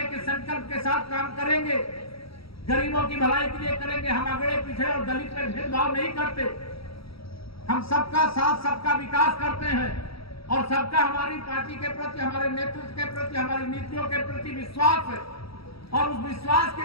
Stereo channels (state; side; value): late; right; 0.76 ms